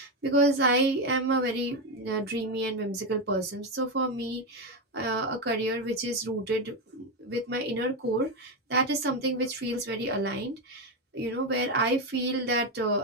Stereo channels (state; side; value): normal; both; correlation 0.10